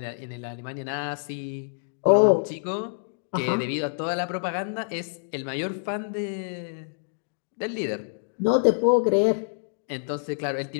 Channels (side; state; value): right; silent; digital silence